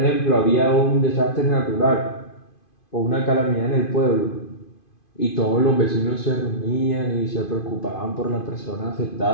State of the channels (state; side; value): late; right; 2.5 ms